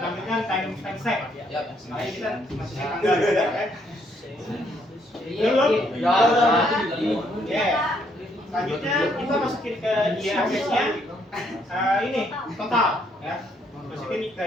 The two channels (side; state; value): both; normal; correlation 0.70